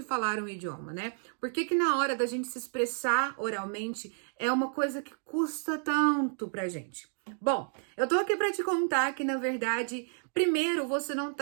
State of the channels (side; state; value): left; silent; 57 dB below the other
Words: falar um idioma, né? Por que na hora da gente se expressar oralmente é uma coisa que custa tanto pra gente? Bom, eu tô aqui pra te contar que, na verdade, primeiro, você não